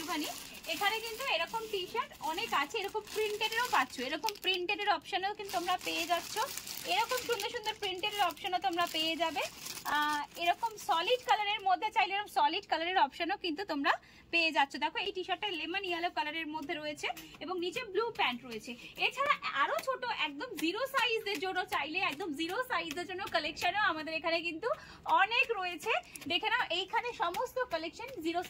এখানে কিন্তু এরকম টি শার্ট অনেক আছে, এরকম প্রিন্টেডেরও পাচ্ছ, এরকম প্রিন্টেডের অপশনও কিন্তু তোমরা পেয়ে যাচ্ছ। এরকম সুন্দর সুন্দর প্রিন্টেডের অপশনও তোমরা পেয়ে যাবে। এরকম সলিড কালারের মধ্যে চাইলে এরকম সলিড কালারের অপশনও কিন্তু তোমরা পেয়ে যাচ্ছ। দেখো এই টি শার্টটা লেমন ইয়েলো কালারের মধ্যে রয়েছে এবং নিচে ব্লু প্যান্ট রয়েছে। এছাড়া আরো ছোট একদম 0 সাইজের জন্য চাইলে একদম 0 সাইজের জন্য কালেকশনও আমাদের এখানে কিন্তু অনেক রয়েছে। দেখে নাও এইখানে সমস্ত কালেকশন 0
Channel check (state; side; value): identical; both; correlation 1.00